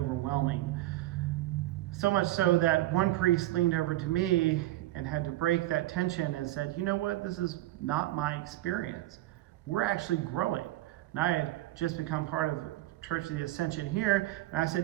So much so that one priest leaned over to me and had to break that tension and said, you know what, this is not my experience. We're actually growing. And I had just become part of Church of the Ascension here, and I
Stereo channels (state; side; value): quieter; left; 16.3 dB